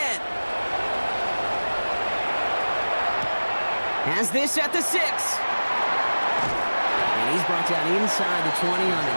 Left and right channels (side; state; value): both; inverted; correlation -1.00